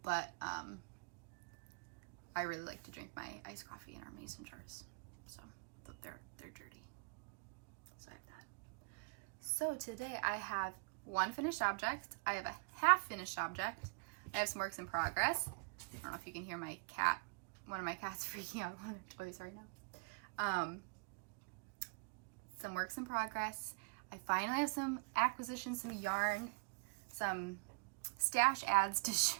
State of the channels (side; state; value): left; quieter; 32.6 dB